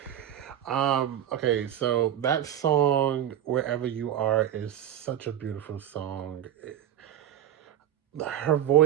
Okay, so that song, Wherever You Are, is such a beautiful song. Her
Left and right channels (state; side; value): quieter; left; 10.8 dB